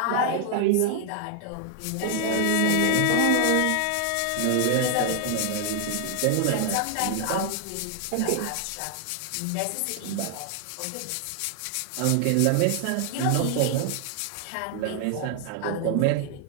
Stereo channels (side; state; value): both; different; correlation 0.00